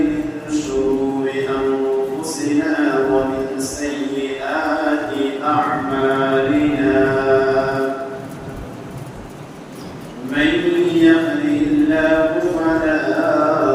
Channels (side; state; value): both; identical; correlation 1.00